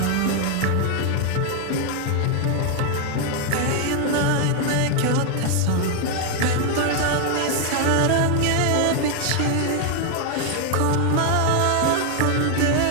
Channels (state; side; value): different; both; correlation 0.00